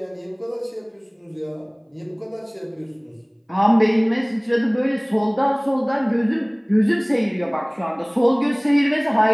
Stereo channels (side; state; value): both; identical; correlation 1.00